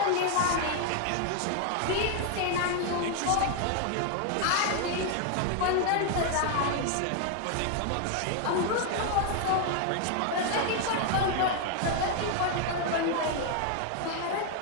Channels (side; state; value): both; different; correlation 0.01